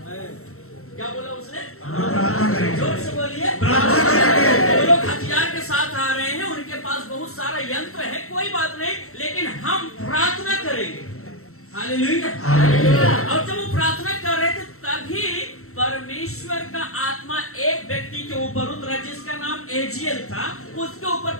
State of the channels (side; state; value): right; late; 0.63 ms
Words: क्या बोला उसने? जोर से बोलिए, वो लोग हथियार के साथ आ रहे हैं, उनके पास बहुत सारा यंत्र है, कोई बात नहीं, लेकिन हम प्रार्थना करेंगे। हालेलुया। और जब वो प्रार्थना कर रहे थे तभी परमेश्वर का आत्मा एक व्यक्ति के ऊपर उतरा जिसका नाम एजियल था। उसके ऊपर